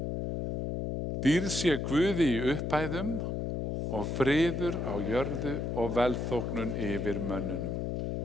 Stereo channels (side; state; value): left; noise; hum, 2 dB below the sound